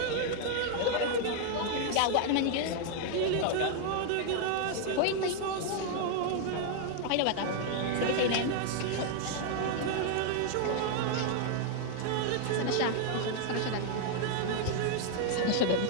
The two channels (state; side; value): different; both; correlation 0.00